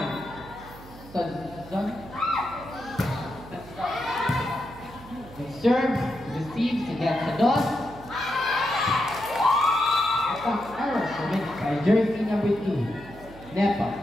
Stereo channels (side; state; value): right; noise; hum, 18 dB below the sound